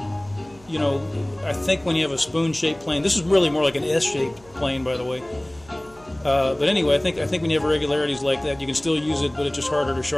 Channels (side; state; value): right; noise; hum, 26 dB below the sound